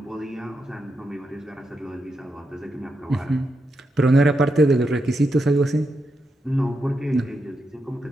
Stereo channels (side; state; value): both; normal; correlation 0.84